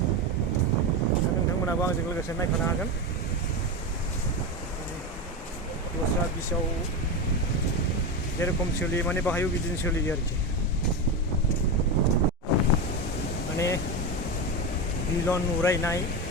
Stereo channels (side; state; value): both; normal; correlation 0.16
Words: नोंथांमोनाबो आंजों लोगोसे नायफानो हागोन। दस्रा बिचआव जेरखम सोलियो माने बाहायबो बिदिनो सोलियो आरोखि। माने बिलन उरायनाय,